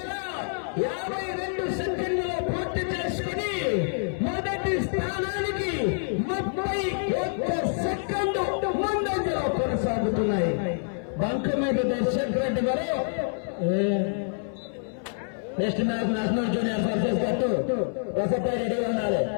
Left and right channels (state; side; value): silent; right; 60 dB below the other